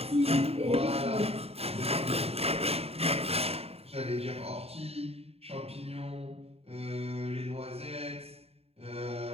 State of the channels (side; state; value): left; late; 0.29 ms